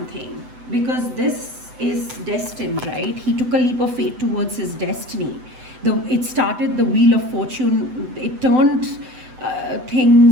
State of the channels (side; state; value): left; late; 8.0 ms